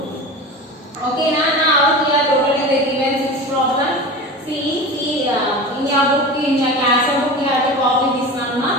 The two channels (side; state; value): both; normal; correlation 0.30